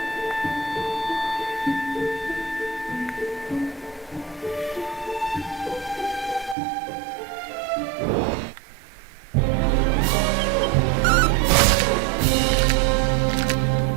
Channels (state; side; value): drops out; left; at 6.6 s